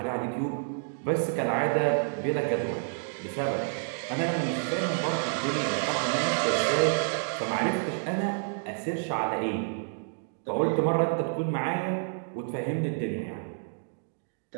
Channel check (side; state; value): left; silent; digital silence